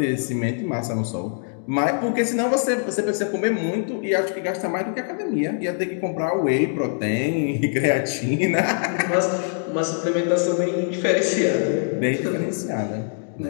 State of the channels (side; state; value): right; silent; 63 dB below the other